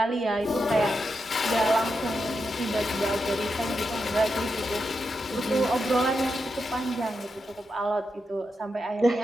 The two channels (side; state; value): both; normal; correlation 0.86